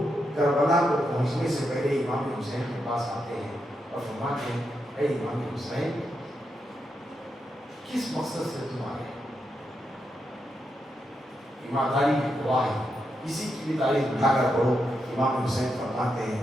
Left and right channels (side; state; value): both; normal; correlation 0.84